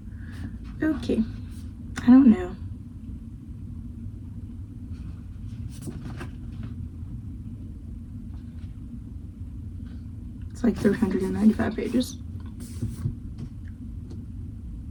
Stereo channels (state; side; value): identical; both; correlation 1.00